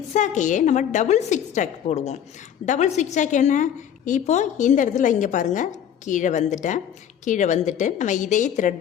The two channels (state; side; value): quieter; right; 9.3 dB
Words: நம்ம டபுள் zigzag போடுவோம். டபுள் zigzag என்ன, இப்போது இந்த இடத்துல இங்கே பாருங்கள் கீழே வந்துட்டேன். கீழே வந்துட்டு நம்ம இதே